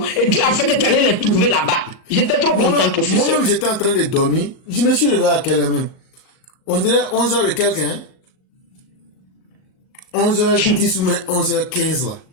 Et Dieu a fait que tu allais les trouver là-bas. J'étais trop content, professeur. Moi-même, j'étais en train de dormir. Je me suis réveillé à quelle heure même? On dirait 11h et quelques, hein? 11h10 ou même 11h15 là.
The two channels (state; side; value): late; right; 38 ms